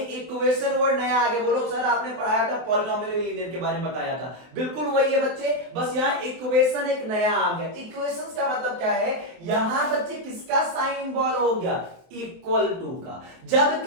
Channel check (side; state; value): left; late; 23 ms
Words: इक्वेशन वर्ड नया आगे बोलो, सर आपने पढ़ाया था पॉलिनोमियल लीनियर के बारे में बताया था, बिल्कुल वही है बच्चे, बस यहाँ इक्वेशन एक नया आ गया। इक्वेशन का मतलब क्या है, यहां बच्चे किसका साइन इन्वॉल्व हो गया? इक्वल टू का। जब